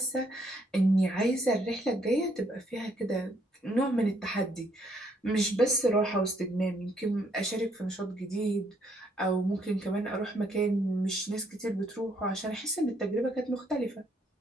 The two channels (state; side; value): normal; both; correlation 0.70